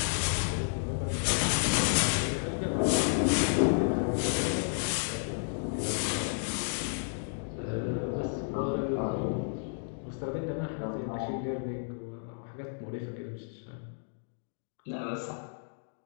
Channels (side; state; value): right; silent; digital silence